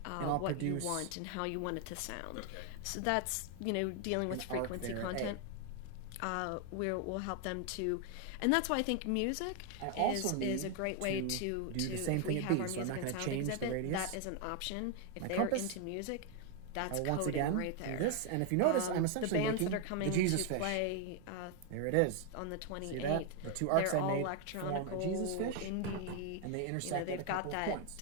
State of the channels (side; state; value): both; different; correlation 0.01